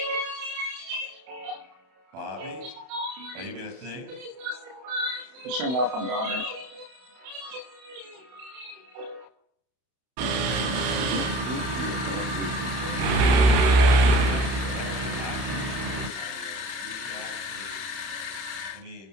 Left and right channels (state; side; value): late; left; 32 ms